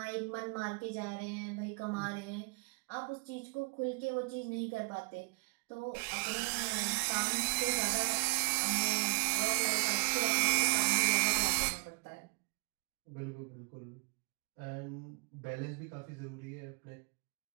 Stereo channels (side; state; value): left; quieter; 31.3 dB